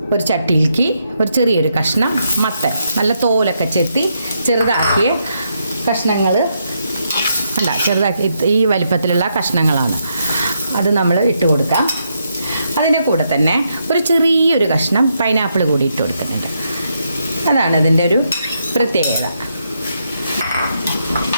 ഒരു ചട്ടിയിലേക്ക് ഒരു ചെറിയൊരു കഷ്ണം മത്തൻ, നല്ല തോലൊക്കെ ചെത്തി ചെറുതാക്കിയ കഷ്ണങ്ങൾ ചെറുതാക്കി ഈ വലിപ്പത്തിലുള്ള കഷ്ണങ്ങളാണ്. അത് നമ്മൾ ഇട്ട് കൊടുക്കാം. അതിൻ്റെ കൂടെ തന്നെ ഒരു ചെറിയൊരു കഷ്ണം പൈനാപ്പിൾ കൂടി ഇട്ട് കൊടുക്കുന്നുണ്ട്. അതാണ് അതിൻ്റെ ഒരു പ്രത്യേകത.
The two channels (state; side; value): inverted; both; correlation -0.79